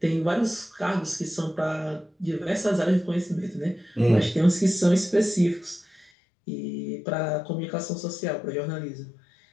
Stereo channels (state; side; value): drops out; right; at 6.1 s